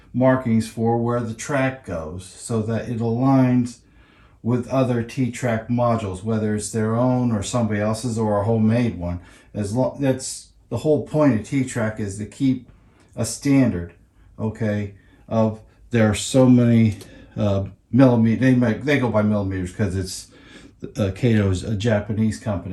markings for where the track goes so that it aligns with other T-Trak modules, whether it's their own or somebody else's or a homemade one. That's the whole point of T-Trak, is to keep a standard, okay, of there are so many millimeters. They go by millimeters because it's Kato's a Japanese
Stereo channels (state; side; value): identical; both; correlation 1.00